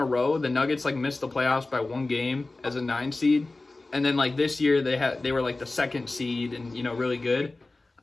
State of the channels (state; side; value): quieter; right; 3.2 dB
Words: row, the Nuggets, like, missed the playoffs by 1 game as a 9 seed. And then, like, this year, they were, like, the 2nd seed and, you know, really good.